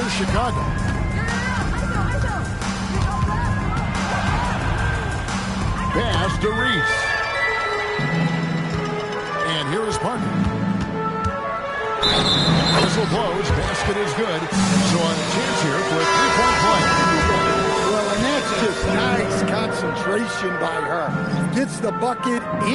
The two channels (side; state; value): both; identical; correlation 1.00